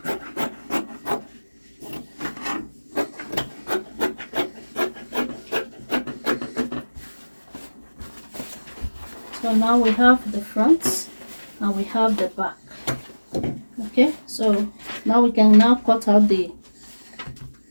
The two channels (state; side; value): inverted; both; correlation -1.00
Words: So now we have the front and we have the back, okay. So now we can now cut out the